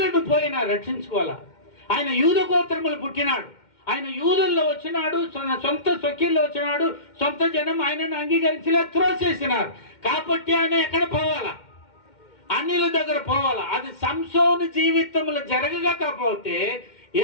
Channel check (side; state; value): right; late; 2.1 ms